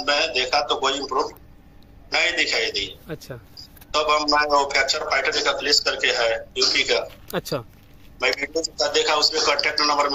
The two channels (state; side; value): identical; both; correlation 1.00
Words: मैं देखा तो कोई इम्प्रूव नहीं दिखाई दी। अच्छा। तब मैं फ्रैक्चर फाइटर का क्लिस करके है यूपी का। अच्छा। मैं वीडियो देखा, उसमें कांटेक्ट नंबर